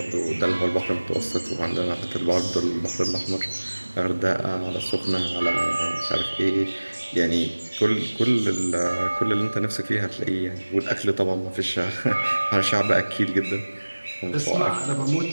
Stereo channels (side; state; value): both; inverted; correlation -1.00